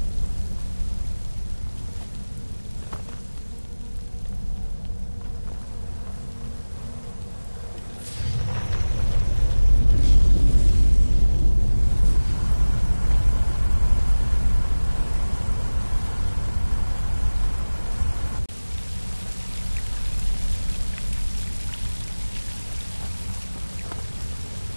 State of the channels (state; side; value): inverted; both; correlation -1.00